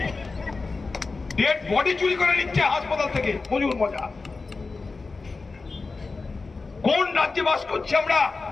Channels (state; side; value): quieter; right; 4.0 dB